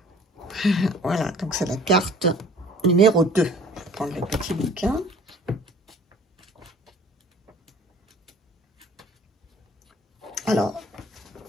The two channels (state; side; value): normal; both; correlation 0.51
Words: Voilà, donc c'est la carte numéro 2. Je vais prendre le petit bouquin. Alors,